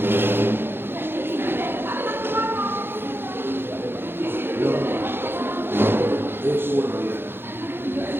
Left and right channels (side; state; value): left; late; 0.10 ms